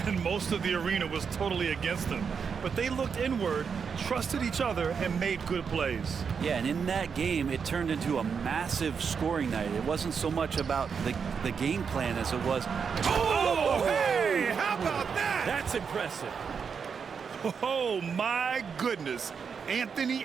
And most of the arena was totally against them. But they looked inward, trusted each other, and made good plays. Yeah, and in that game, it turned into a massive scoring night. It wasn't so much about the game plan as it was. Oh, hey! That's impressive. Oh, my goodness.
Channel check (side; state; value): left; quieter; 6.3 dB